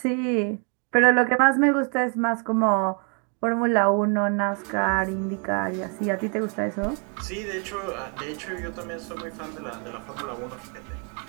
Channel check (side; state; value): left; quieter; 39.3 dB